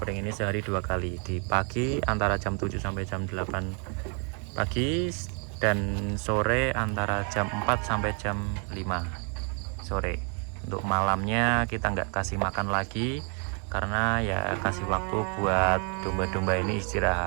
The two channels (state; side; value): quieter; left; 38.6 dB